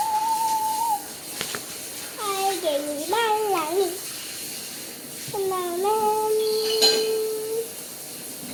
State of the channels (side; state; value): both; identical; correlation 1.00